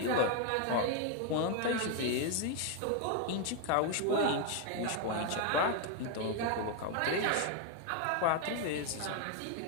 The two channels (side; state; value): both; different; correlation 0.01